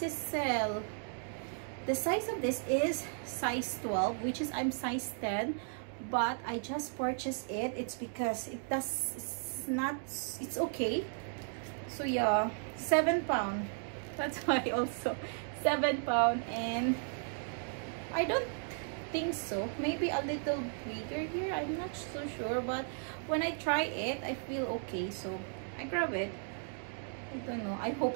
is sale. The size of this is size 12, which is I'm size 10, but I just purchased it. It's because it's okay. So yeah, £7. That's why also £7, and I don't think so. Maybe a little bigger here. I'm not so sure, but when I try it, I feel okay. So I grab it. I don't know. I hope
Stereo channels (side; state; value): left; silent; 54 dB below the other